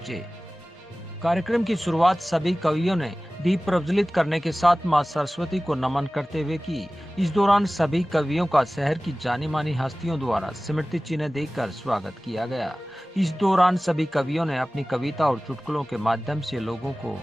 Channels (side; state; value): both; normal; correlation 0.97